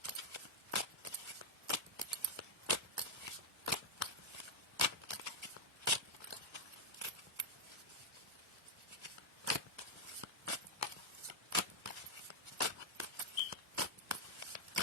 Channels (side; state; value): both; normal; correlation -0.03